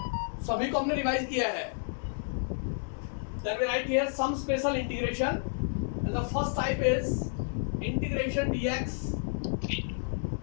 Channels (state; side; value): silent; right; digital silence